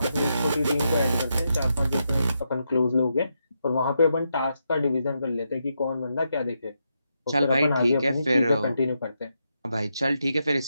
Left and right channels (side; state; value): both; inverted; correlation -0.83